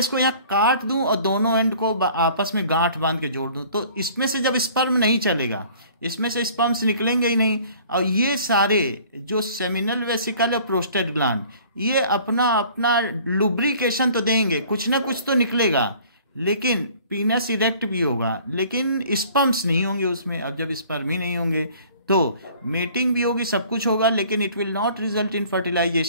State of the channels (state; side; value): inverted; both; correlation -0.52